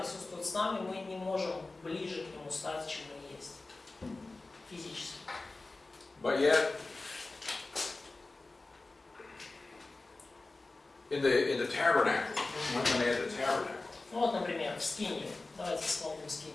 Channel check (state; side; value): quieter; right; 3.3 dB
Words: с нами, мы не можем ближе к Нему стать, чем мы есть. Физически. But yet, in the tabernacle, when they had the tabernacle. Ну вот, например, в Скинии. Давайте вспомним